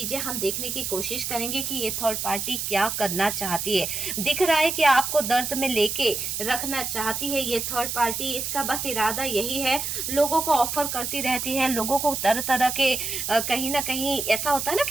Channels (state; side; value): noise; right; hiss, 3 dB below the sound